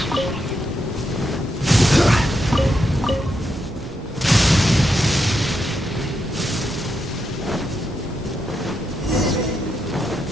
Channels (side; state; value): both; normal; correlation 0.83